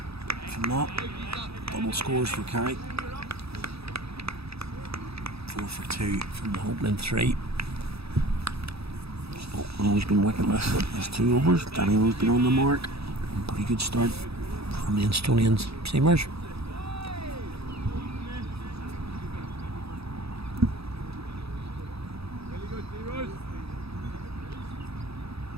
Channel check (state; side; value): late; left; 0.78 ms